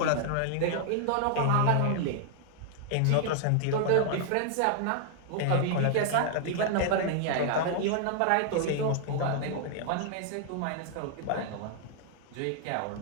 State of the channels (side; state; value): both; different; correlation -0.01